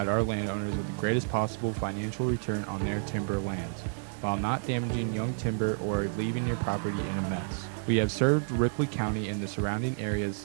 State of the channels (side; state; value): left; silent; 58 dB below the other